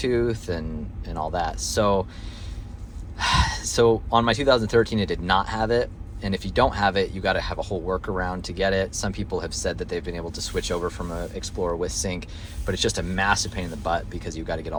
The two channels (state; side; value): identical; both; correlation 1.00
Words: and all that. So on my 2013, it did not have it. And if you don't have it, you got to have a whole workaround to get it. Some people have said that they've been able to switch over from an Explorer with sync, but it's just a massive pain in the butt because you've got to get